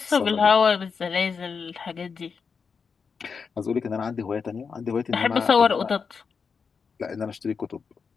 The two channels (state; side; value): quieter; right; 5.7 dB